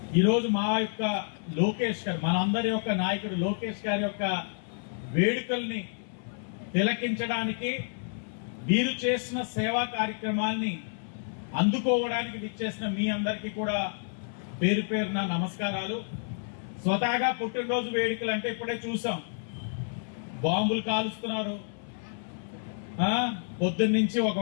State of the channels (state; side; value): silent; right; 58 dB below the other